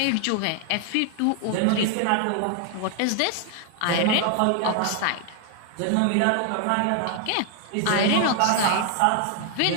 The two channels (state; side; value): different; both; correlation 0.00